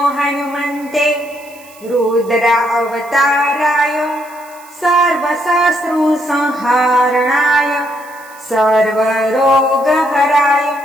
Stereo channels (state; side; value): noise; right; hiss, 24 dB below the sound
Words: हनुमन्ते रुद्र अवताराय सर्वशत्रुसंहारणाय सर्वरोगहराय